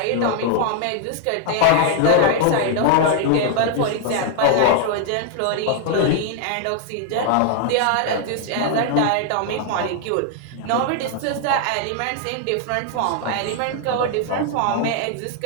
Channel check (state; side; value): different; both; correlation 0.00